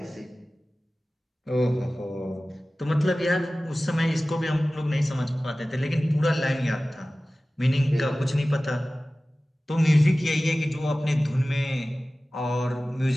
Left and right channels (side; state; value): both; normal; correlation 0.97